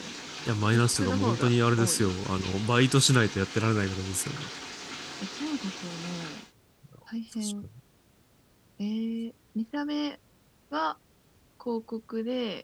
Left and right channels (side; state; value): both; identical; correlation 1.00